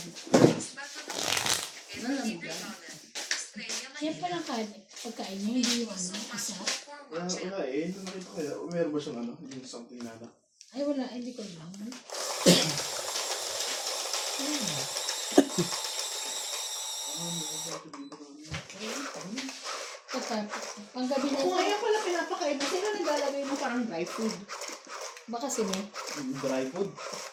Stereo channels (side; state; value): both; identical; correlation 1.00